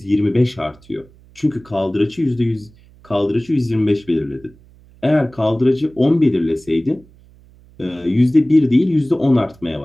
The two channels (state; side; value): noise; right; hum, 27 dB below the sound